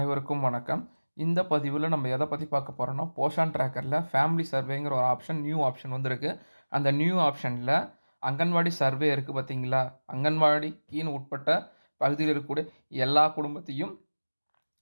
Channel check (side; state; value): both; inverted; correlation -1.00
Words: வணக்கம். இந்த பதிவில் நம்ம எதை பற்றி பார்க்க போகிறோம்னா, போஷன் ட்ராக்கரில் ஃபேமிலி சர்வேங்கிற ஒரு ஆப்ஷன், நியூ ஆப்ஷன் வந்திருக்கு. அந்த நியூ ஆப்ஷனில் அங்கன்வாடி சர்வே இருக்குது பார்த்தீங்களா, அங்கன்வாடிக்கின்னு உட்பட்ட பகுதியில் இருக்கக்கூடிய எல்லா குடும்பத்தையும்